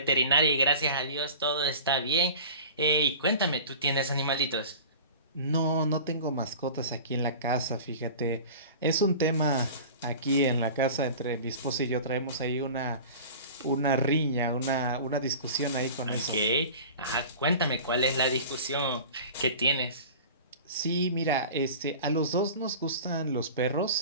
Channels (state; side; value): inverted; both; correlation -0.38